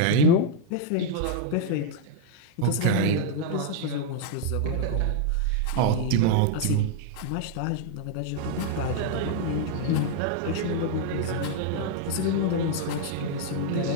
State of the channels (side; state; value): both; different; correlation -0.01